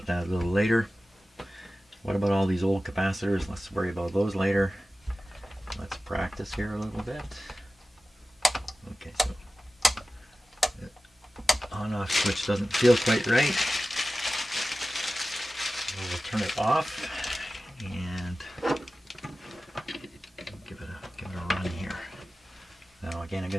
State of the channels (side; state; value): both; normal; correlation 0.95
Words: that a little later. What about all these old capacitors? Let's worry about those later. Let's practice here a little bit. Okay, so the on-off switch doesn't feel quite right. So we'll turn it off and give it a run here. Now again, I'm